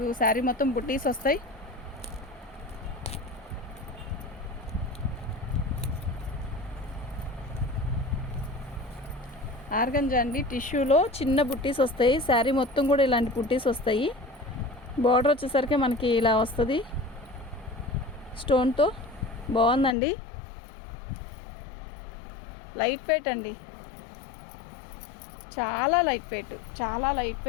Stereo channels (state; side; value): drops out; right; at 20.0 s